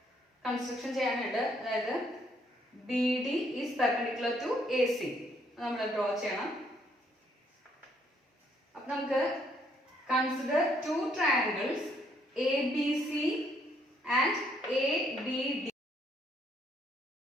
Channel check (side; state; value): both; normal; correlation 0.69